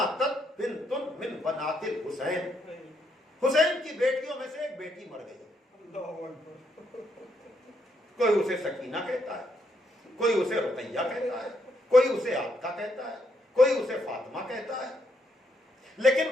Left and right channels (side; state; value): both; normal; correlation 0.76